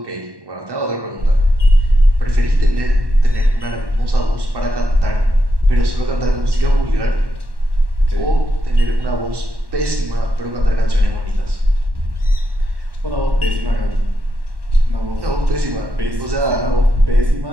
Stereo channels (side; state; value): left; late; 1.1 ms